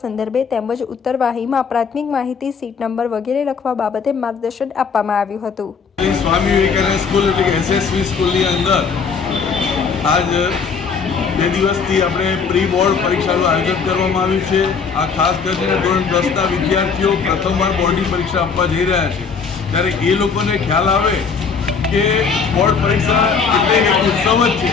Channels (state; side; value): quieter; right; 5.7 dB